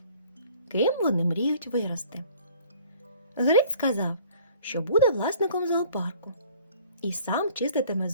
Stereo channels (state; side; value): inverted; both; correlation -0.53